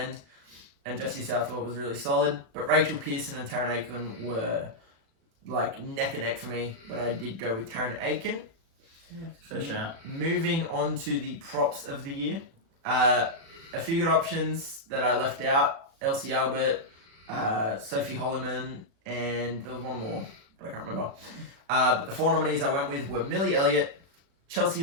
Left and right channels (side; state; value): left; late; 36 ms